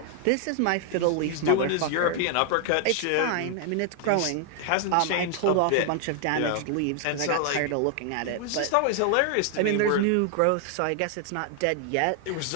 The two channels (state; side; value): different; both; correlation 0.00